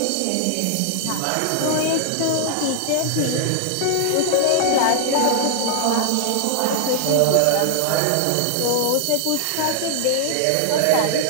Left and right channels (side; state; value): both; different; correlation -0.01